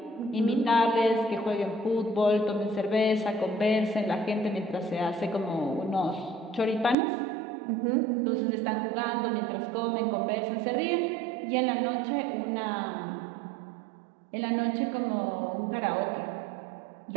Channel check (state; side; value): drops out; left; at 7.0 s